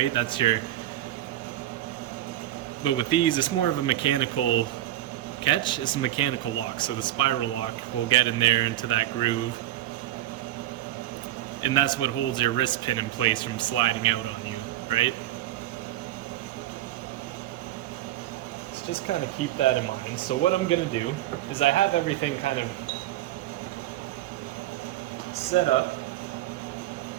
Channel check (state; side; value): quieter; left; 14.2 dB